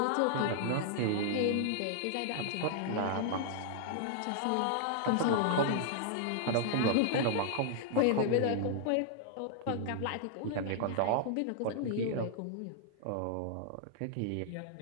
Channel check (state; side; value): different; both; correlation -0.01